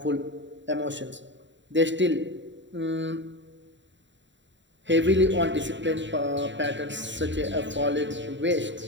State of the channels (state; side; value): late; left; 0.53 ms